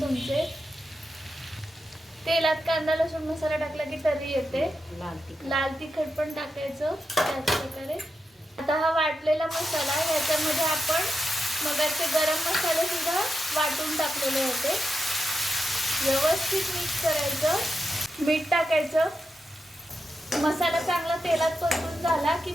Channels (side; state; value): both; normal; correlation 0.87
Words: तेलात कांदा लसूण मसाला टाकला की तरी येते. लाल तिखट पण टाकायचं त्याच प्रकारे. आता हा वाटलेला मसाला, ह्याच्यामध्ये आपण मगाचे गरम मसाले सुद्धा वाटून टाकलेले होते. व्यवस्थित मिक्स करायचं. मीठ टाकायचं. मसाला चांगला तेलात परतून झाला की